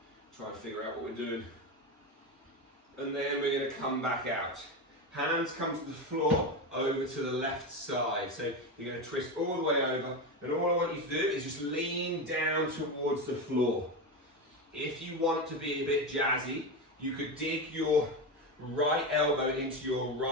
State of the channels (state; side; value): normal; both; correlation 0.17